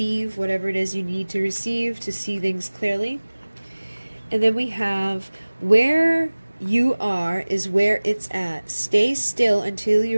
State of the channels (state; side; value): inverted; both; correlation -1.00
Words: whatever it is you need to receive to see things clearly. And then we have where you are is where it's at. Stay still until